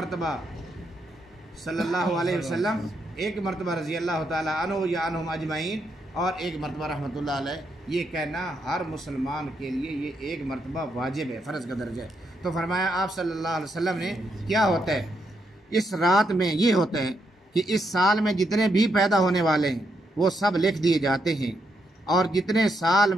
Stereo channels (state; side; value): normal; both; correlation 0.79